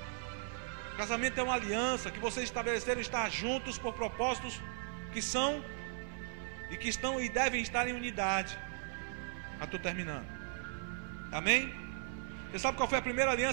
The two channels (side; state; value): left; silent; digital silence